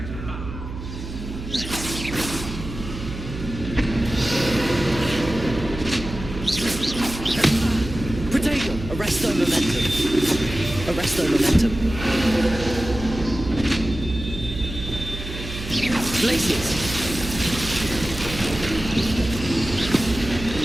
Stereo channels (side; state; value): right; noise; hum, 9 dB below the sound